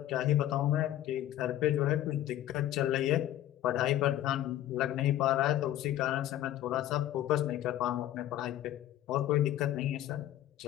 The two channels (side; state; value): right; quieter; 13.0 dB